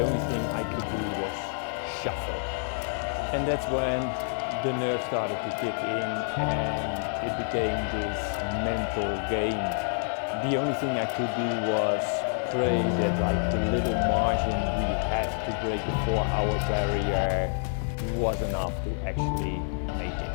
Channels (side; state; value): right; silent; 59 dB below the other